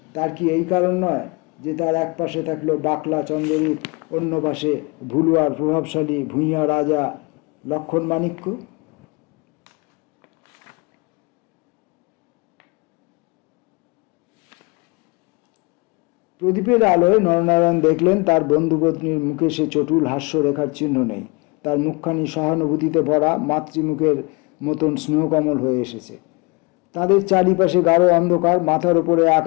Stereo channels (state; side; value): quieter; right; 28.0 dB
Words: তার কি এই কারণ নয় যে তার এক পাশে থাকলো বাকলা চন্দ্ররূপ, অন্য পাশে ভুলুয়ার প্রভাবশালী ভূঁইয়া রাজা লক্ষণ মাণিক্য? প্রদীপের আলোয় নরনারায়ণ দেখলেন তার বন্ধুপত্নীর মুখে সে চটুল হাস্যরেখার চিহ্ন নেই। তার মুখখানি সহানুভূতিতে ভরা, মাতৃমুখের মতন স্নেহকমল হয়ে এসেছে। তাদের চারিপাশে গাঢ় অন্ধকার, মাথার ওপরে